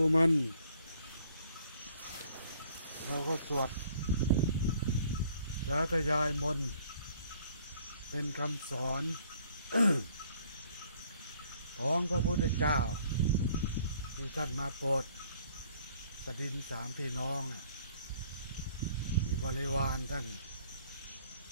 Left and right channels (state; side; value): inverted; both; correlation -0.60